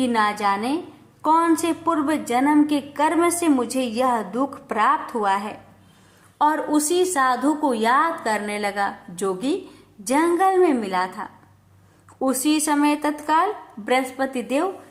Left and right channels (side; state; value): both; identical; correlation 1.00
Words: ना जाने कौन से पूर्व जन्म के कर्म से मुझे यह दुख प्राप्त हुआ है, और उसी साधु को याद करने लगा जो कि जंगल में मिला था। उसी समय तत्काल बृहस्पति देव